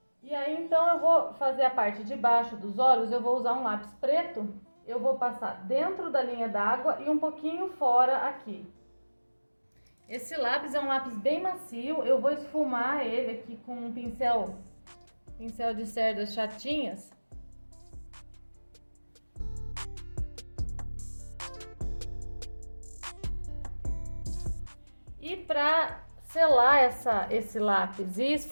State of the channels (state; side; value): inverted; both; correlation -1.00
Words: E aí, então, eu vou fazer a parte de baixo dos olhos, eu vou usar um lápis preto. Eu vou passar dentro da linha d'água e um pouquinho fora aqui. Esse lápis é um lápis bem macio, eu vou esfumar ele aqui com um pincel de cerdas chatinhas. E para selar esse lápis e